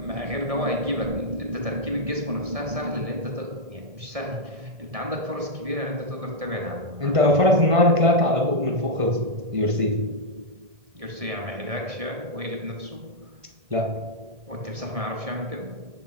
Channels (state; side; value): late; left; 1.6 ms